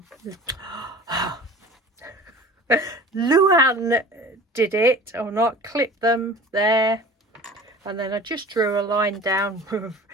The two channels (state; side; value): normal; both; correlation 0.42